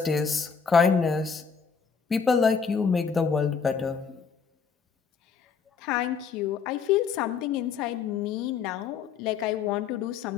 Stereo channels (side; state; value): right; quieter; 6.0 dB